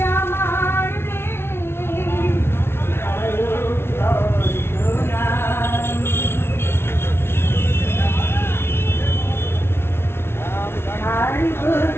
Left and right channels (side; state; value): right; late; 0.12 ms